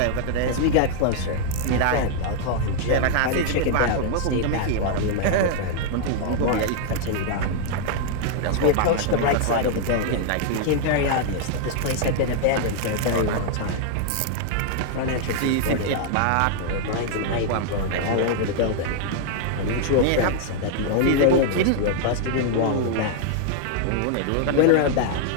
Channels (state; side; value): different; both; correlation 0.00